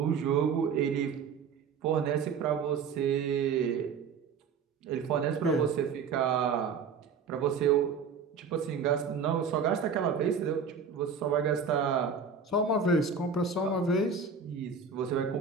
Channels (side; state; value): left; quieter; 5.8 dB